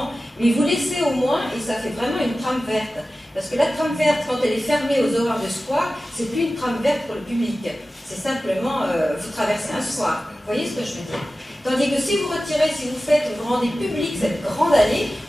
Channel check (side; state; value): both; normal; correlation 0.95